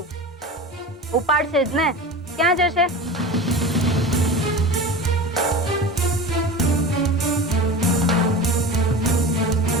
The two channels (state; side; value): normal; both; correlation 0.31